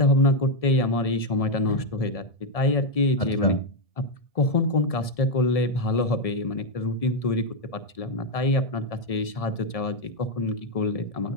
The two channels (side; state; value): right; late; 1.7 ms